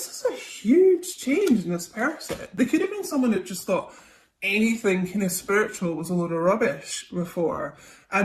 a huge change in this person. They could have been someone that just thought anything kind of spiritual was a load of rubbish before.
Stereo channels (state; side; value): identical; both; correlation 1.00